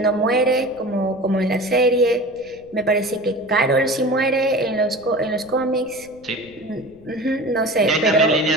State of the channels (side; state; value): right; noise; rumble, 27 dB below the sound